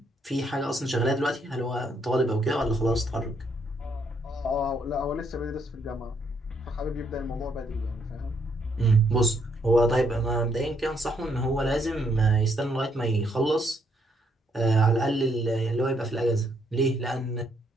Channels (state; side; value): normal; both; correlation 0.72